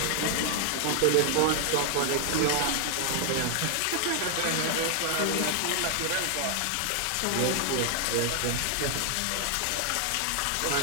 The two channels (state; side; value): different; both; correlation 0.00